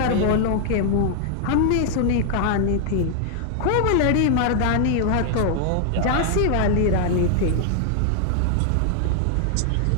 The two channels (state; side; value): different; both; correlation -0.01